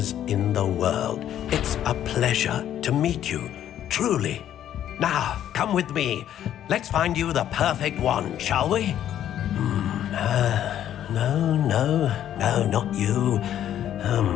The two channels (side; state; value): right; quieter; 11.0 dB